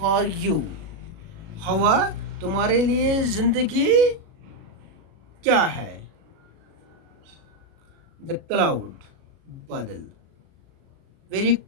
you, हवा तुम्हारे लिए जिंदगी क्या है। द क्लाउड, बादल, वेरी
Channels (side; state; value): left; late; 37 ms